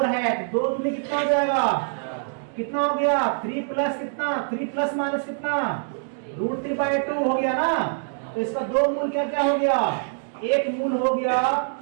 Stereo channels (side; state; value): left; silent; digital silence